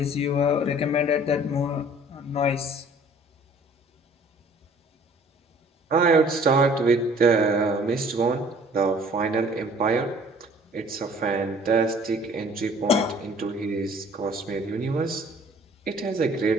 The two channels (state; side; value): normal; both; correlation 0.53